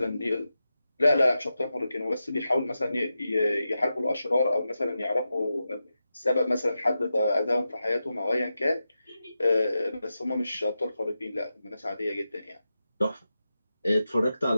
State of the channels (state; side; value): inverted; both; correlation -0.90